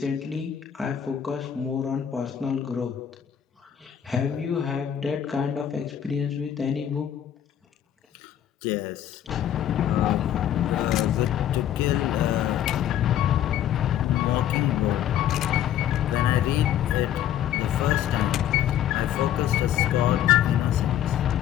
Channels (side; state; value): right; quieter; 10.5 dB